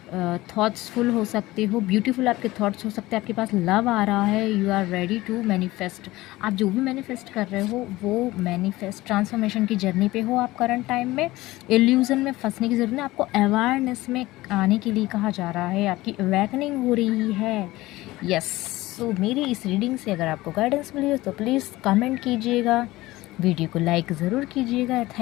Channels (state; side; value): quieter; right; 18.4 dB